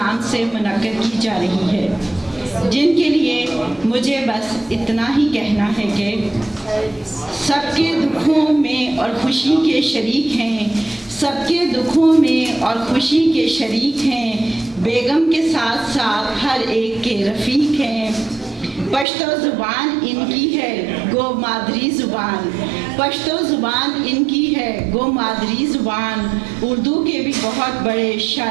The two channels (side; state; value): left; drops out; at 19.1 s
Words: سے منعقد کی جا رہی ہے، جن کے لیے مجھے بس اتنا ہی کہنا ہے کہ سب کے دکھوں میں اور خوشی کے شریک ہیں، سب کے دکھوں میں اور خوشی کے شریک ہیں، بیگم کے ساتھ ساتھ ہر ایک کے رفیق ہیں۔ پشتو زبان ان کی ہے گو مادری زبان، پشتو زبان ان کی ہے گو مادری زبان، اردو کے بھی بہت بڑے